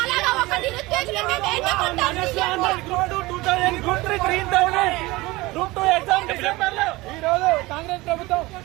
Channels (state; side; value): quieter; left; 21.0 dB